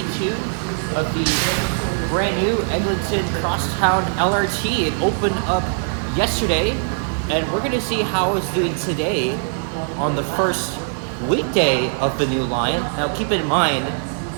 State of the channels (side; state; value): left; silent; digital silence